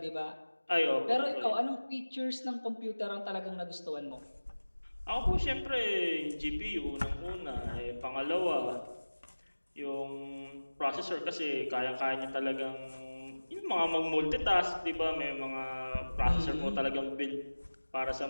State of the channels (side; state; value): both; inverted; correlation -1.00